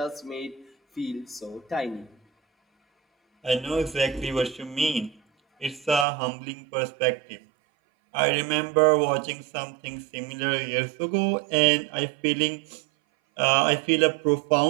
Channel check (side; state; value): left; drops out; at 6.1 s